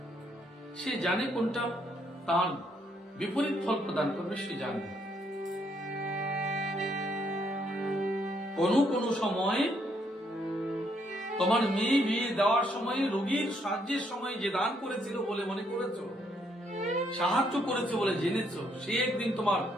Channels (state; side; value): normal; both; correlation 0.72